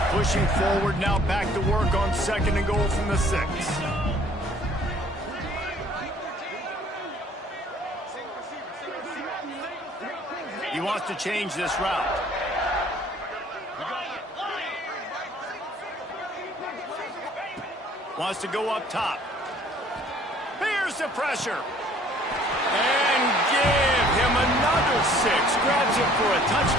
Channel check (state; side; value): normal; both; correlation 0.56